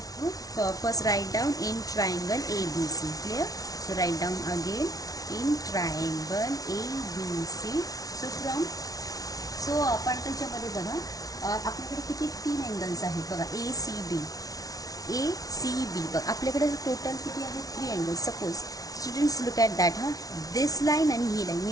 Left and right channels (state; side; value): late; right; 0.18 ms